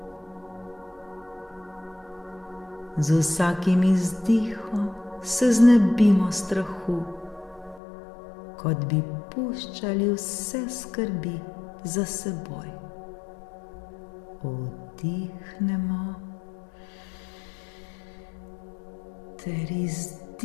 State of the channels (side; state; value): right; drops out; at 7.8 s